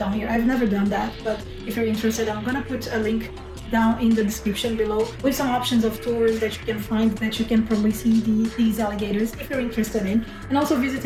here. I've never done that, but if you're interested, I'm gonna put a link down in the description below with some options of tours that you can find, that you can probably see these alligators if you're interested in, and also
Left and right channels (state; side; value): identical; both; correlation 1.00